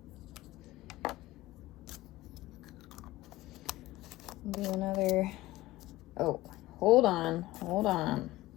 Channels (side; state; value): right; quieter; 17.9 dB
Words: Do another, oh, hold on.